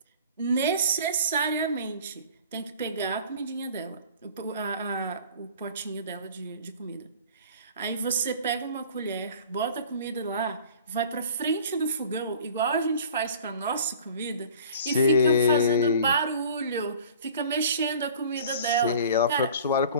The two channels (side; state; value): both; inverted; correlation -0.45